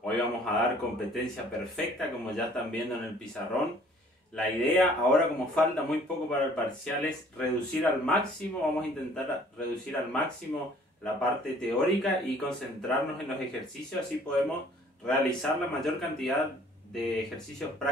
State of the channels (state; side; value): normal; both; correlation 0.56